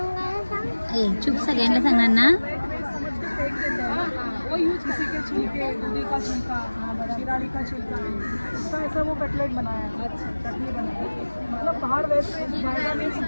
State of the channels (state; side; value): inverted; both; correlation -1.00